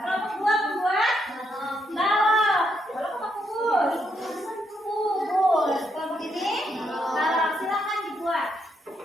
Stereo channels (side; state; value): both; normal; correlation 0.78